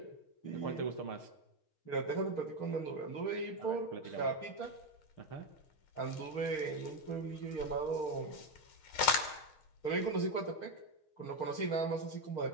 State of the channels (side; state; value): right; late; 6.5 ms